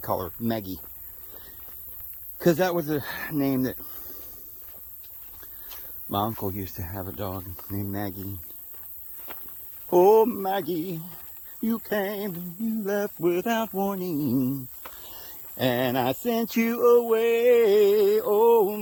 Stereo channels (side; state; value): both; identical; correlation 1.00